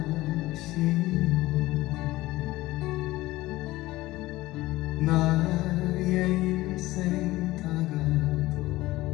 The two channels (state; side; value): quieter; right; 18.1 dB